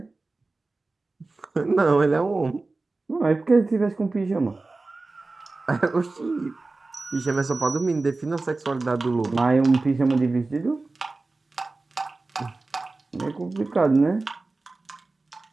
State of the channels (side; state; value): left; quieter; 3.4 dB